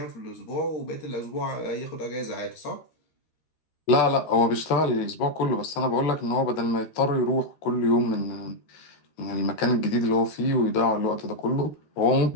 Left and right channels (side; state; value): right; late; 13 ms